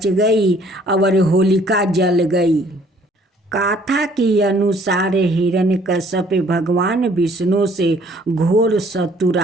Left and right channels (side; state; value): both; normal; correlation 0.59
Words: गई और होलिका जल गई। गाथा के अनुसार हिरण्यकश्यप भगवान विष्णु से घोर